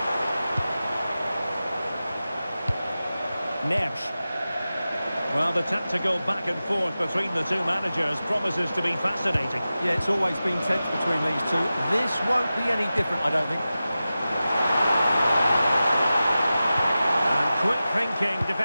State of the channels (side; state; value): both; inverted; correlation -0.94